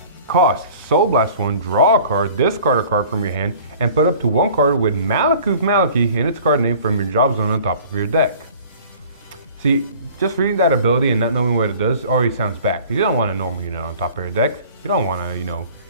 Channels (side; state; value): both; inverted; correlation -0.47